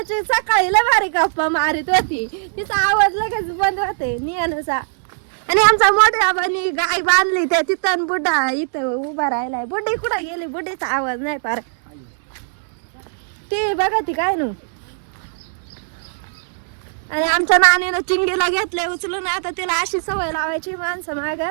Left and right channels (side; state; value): left; silent; digital silence